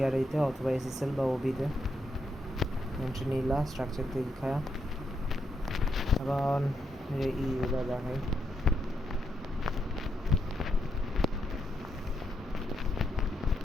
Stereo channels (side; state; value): both; normal; correlation 0.80